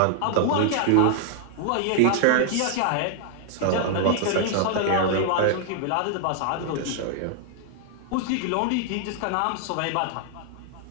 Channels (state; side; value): different; both; correlation 0.00